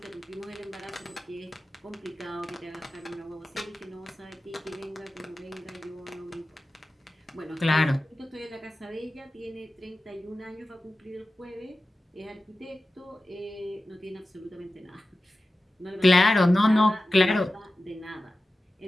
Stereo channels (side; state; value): both; normal; correlation 0.94